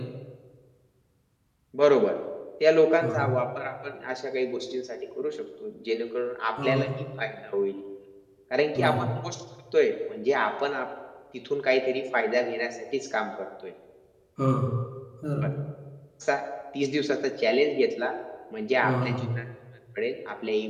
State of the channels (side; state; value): both; identical; correlation 1.00